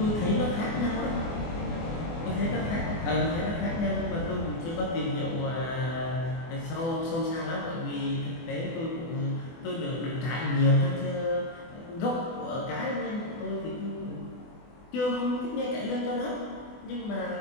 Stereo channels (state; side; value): late; right; 24 ms